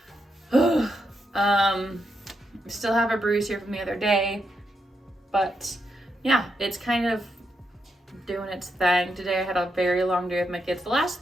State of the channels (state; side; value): normal; both; correlation 0.82